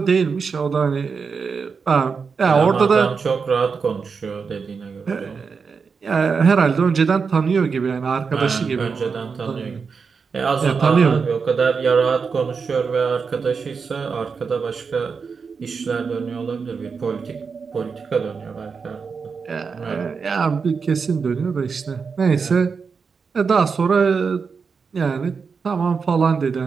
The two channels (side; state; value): left; quieter; 5.4 dB